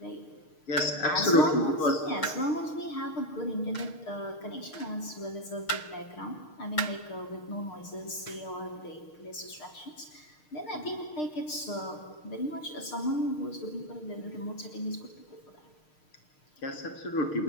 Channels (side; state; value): right; late; 6.5 ms